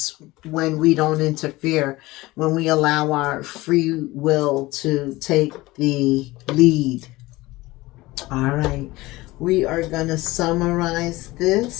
when we don't interfere, when we allow our free will to take the lead. All right, we are gonna summarize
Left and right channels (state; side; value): quieter; right; 19.7 dB